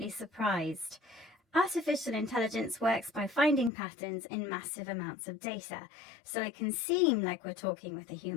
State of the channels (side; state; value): right; drops out; at 3.7 s